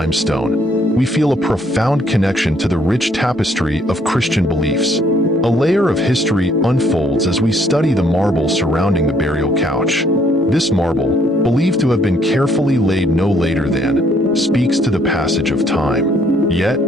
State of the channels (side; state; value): both; normal; correlation 0.66